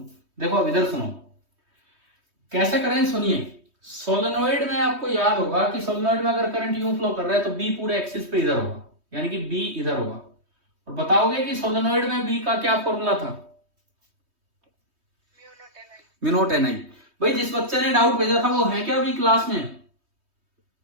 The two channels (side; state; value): left; late; 3.2 ms